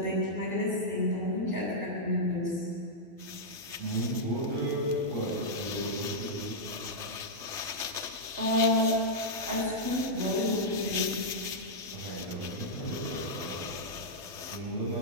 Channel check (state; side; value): late; left; 12 ms